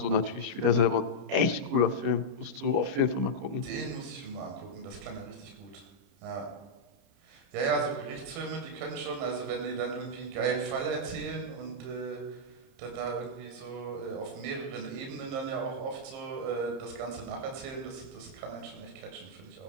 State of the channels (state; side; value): late; left; 30 ms